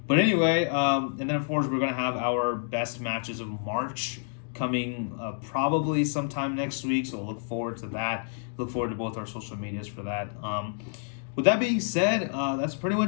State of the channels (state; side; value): silent; right; digital silence